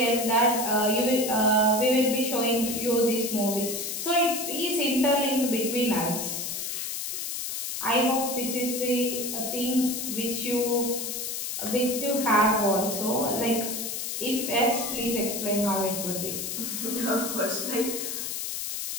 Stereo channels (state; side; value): noise; left; hiss, 4 dB below the sound